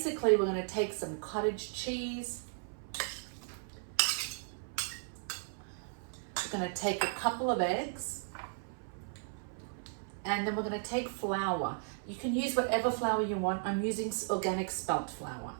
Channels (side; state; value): left; silent; 54 dB below the other